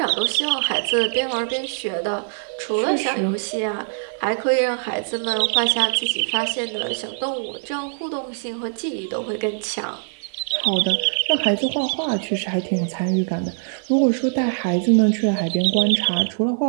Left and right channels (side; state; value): left; silent; digital silence